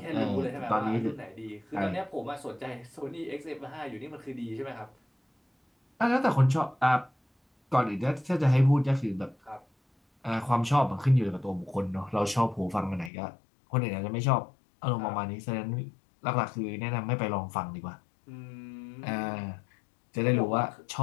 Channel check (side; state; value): right; drops out; at 13.1 s